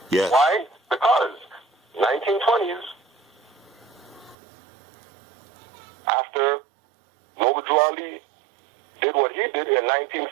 Yes. Why? Because 1920s, after Noble Ali did what he did in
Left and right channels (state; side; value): drops out; left; at 4.4 s